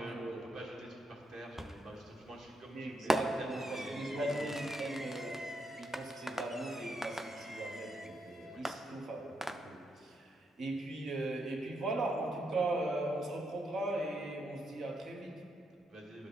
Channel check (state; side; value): normal; both; correlation 0.80